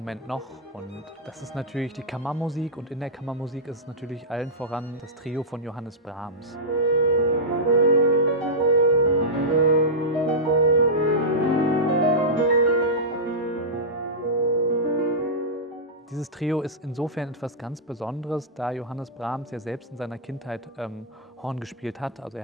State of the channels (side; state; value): both; normal; correlation -0.13